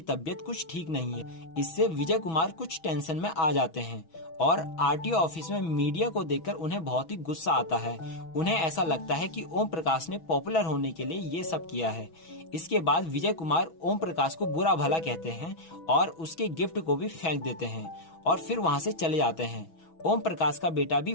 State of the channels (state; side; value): late; right; 6.1 ms